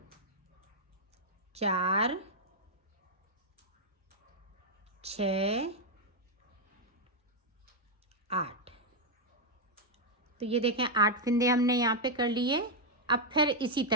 4, 6, 8, तो ये देखें 8 फंदे हमने यहाँ पे कर लिए। अब फिर इसी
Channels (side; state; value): both; normal; correlation -0.01